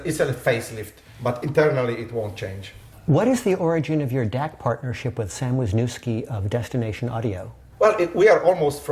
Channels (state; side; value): identical; both; correlation 1.00